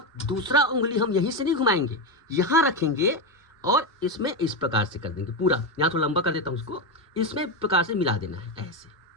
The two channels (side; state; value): both; normal; correlation 0.11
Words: दूसरा उंगली हम यहीं से नहीं घुमाएंगे, यहाँ रखेंगे और इसमें इस प्रकार से कर देंगे पूरा। यहाँ तो लंबा कर देता हूँ उसको, इसमें प्रकार से मिला देना है, ऐसे,